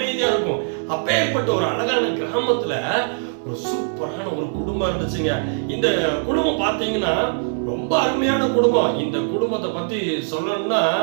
இருக்கும். அப்பேற்பட்ட ஒரு அழகான கிராமத்துல ஒரு சூப்பரான ஒரு குடும்பம் இருந்துச்சுங்க. இந்த குடும்பம் பாத்தீங்கன்னா ரொம்ப அருமையான குடும்பம். இந்த குடும்பத்தை பத்தி சொல்லணும்னா,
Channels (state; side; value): silent; left; digital silence